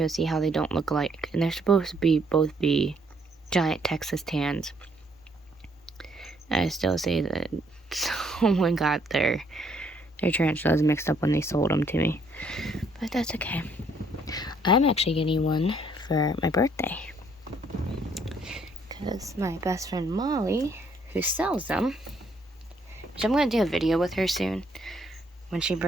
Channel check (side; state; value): both; normal; correlation 0.67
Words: see how they don't look alike. And they're supposed to be both be giant Texas tans. I still say that someone got their tarantulas mixed up when they sold them to me. But that's okay. I'm actually getting one for my birthday. Because my best friend Molly, who sells them, which I'm going to do a video with her soon.